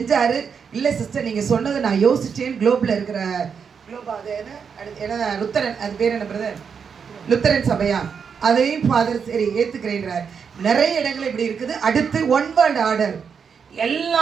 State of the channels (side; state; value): left; quieter; 6.5 dB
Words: இல்லை சிஸ்டர் நீங்கள் சொன்னதை நான் யோசிச்சேன், குளோபில் இருக்கிற குளோபா அது என்ன லுத்தரன், அது பேர் என்ன பிரதர், லுத்தரன் சபையா, அதையும் ஃபாதர் சரி ஏற்றுக்கிறேன்றார். நிறைய இடங்கள் இப்படி இருக்குது. அடுத்து ஒன் வேர்ல்ட் ஆர்டர்,